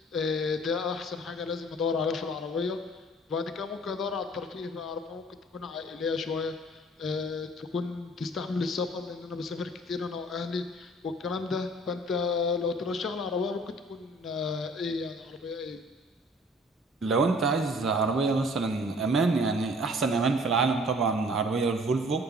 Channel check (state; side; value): normal; both; correlation 0.53